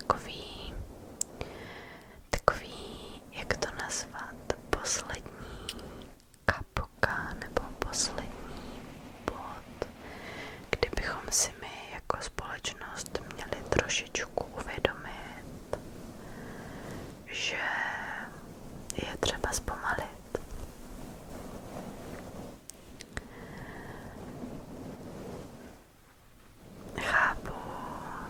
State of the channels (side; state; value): both; identical; correlation 1.00